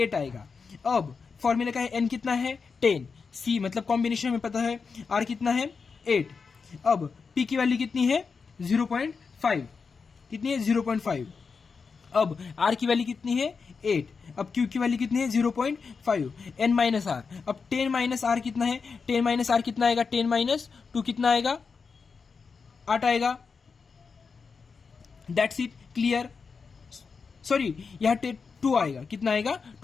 आएगा। अब फॉर्मूला का है n कितना है 10, c मतलब कॉम्बिनेशन हमें पता है, r कितना है 8। अब p की वैल्यू कितनी है 0.5, कितनी है 0.5। अब r की वैल्यू कितनी है 8। अब q की वैल्यू कितनी है 0.5, n माइनस r। अब 10 माइनस r कितना है, 10 माइनस r कितना आएगा 10 माइनस 2 कितना आएगा 8 आएगा। That's it, clear. सॉरी यहाँ 2 आएगा, कितना आएगा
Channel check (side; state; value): right; quieter; 5.2 dB